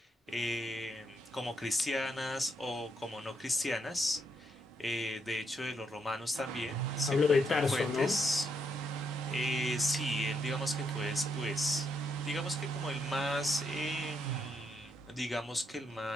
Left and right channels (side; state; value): both; normal; correlation 0.77